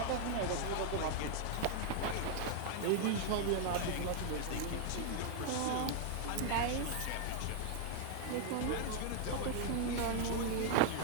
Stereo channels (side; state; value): both; different; correlation 0.00